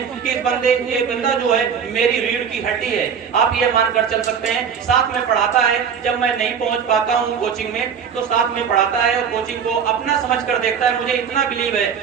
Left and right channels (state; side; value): quieter; left; 7.2 dB